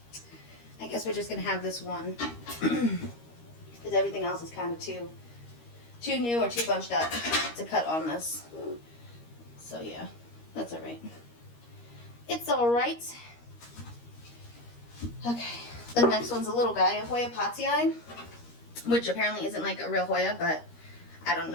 I guess we're just going to have this one. Because everything else is kind of too new or too bunched up to cut on this. So yeah, that's alright. It's alright. Okay, the next one's a little guy, a Hoya Potsii, which apparently isn't like a real Hoya, but I don't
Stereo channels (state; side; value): late; right; 13 ms